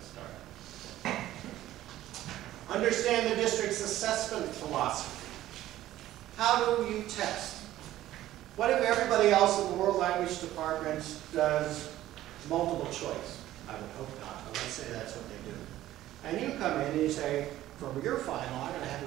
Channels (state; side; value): quieter; left; 14.2 dB